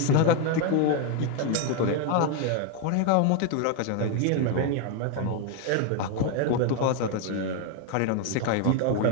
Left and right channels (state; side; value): different; both; correlation 0.01